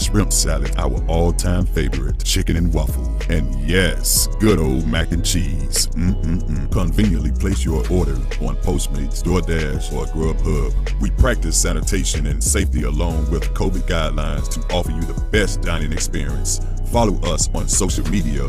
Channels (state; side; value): identical; both; correlation 1.00